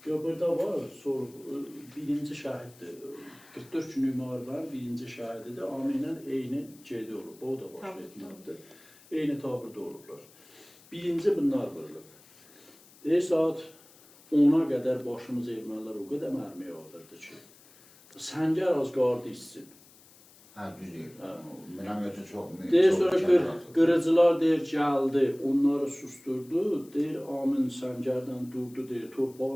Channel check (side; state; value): left; noise; hiss, 25 dB below the sound